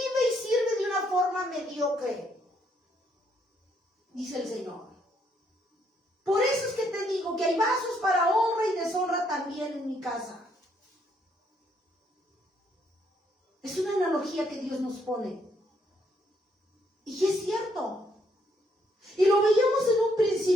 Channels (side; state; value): both; normal; correlation 0.71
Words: y sirve de una forma mediocre, dice el Señor. Por eso es que te digo que hay vasos para honra y deshonra también en mi casa. Es una analogía que Dios nos pone. Y es cierto. Y lo veíamos en un